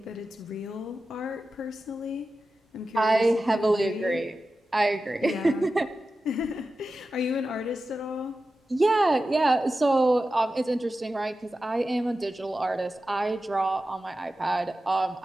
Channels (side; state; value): both; normal; correlation 0.93